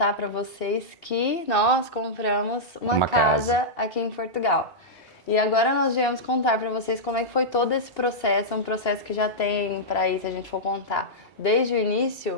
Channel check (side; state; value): right; late; 2.8 ms